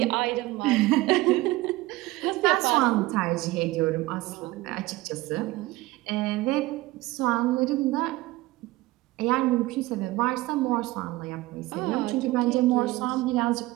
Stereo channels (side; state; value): left; quieter; 19.1 dB